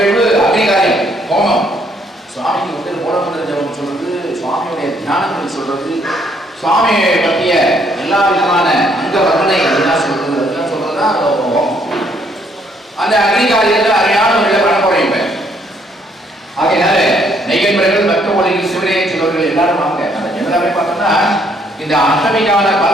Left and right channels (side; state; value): both; normal; correlation 0.68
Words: அக்னிகாரியம் ஹோமம். சுவாமிக்கு மூலமந்திர ஜபம் சொல்றது, சுவாமியுடைய தியானங்கள் சொல்றது, சுவாமியை பற்றிய எல்லா விதமான அங்க வர்ணனை அதெல்லாம் சொல்றது, அதெல்லாம் சொல்றதுதான் ஹோமம். அந்த அக்னிகாரியத்துல அருமையான ஒரு பண்ண போறேன் இப்ப. ஆகையினால நெய்யன்பர்கள் பக்த ஒளியில் சிவனையை சிலவர்கள் எல்லாரும் வாங்க. அந்த ஜெனராவே பார்த்தோம்னா இந்த அஷ்டமிக்கான